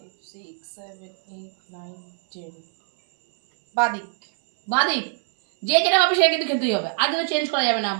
6 7 8 9 10 বাদিক। বাঁ দিক। যে যেটা পাবে সে কিন্তু খেতেই হবে, আর কিন্তু চেঞ্জ করা যাবে না,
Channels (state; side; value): silent; left; 58 dB below the other